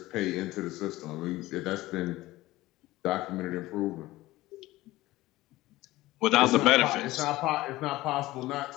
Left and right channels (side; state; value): right; quieter; 17.8 dB